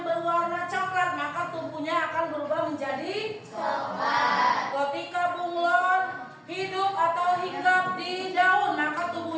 berwarna coklat, maka tubuhnya akan berubah menjadi coklat. Ketika bunglon hidup atau hinggap di daun, maka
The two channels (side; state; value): both; identical; correlation 1.00